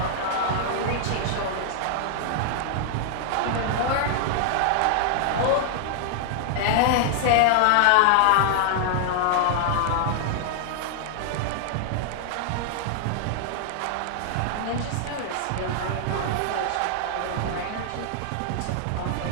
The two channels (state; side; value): different; both; correlation -0.01